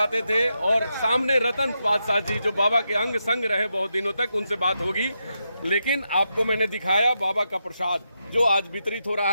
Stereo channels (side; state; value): both; inverted; correlation -0.85